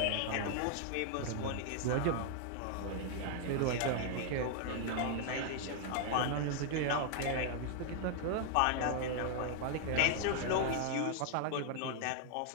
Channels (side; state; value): both; different; correlation 0.00